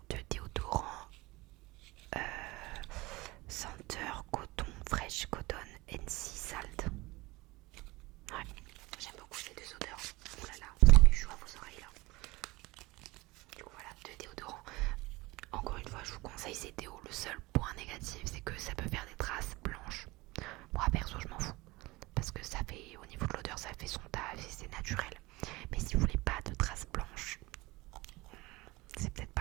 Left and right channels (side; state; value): left; quieter; 21.9 dB